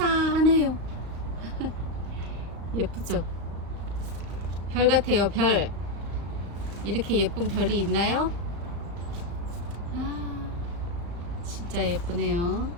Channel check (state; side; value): late; left; 35 ms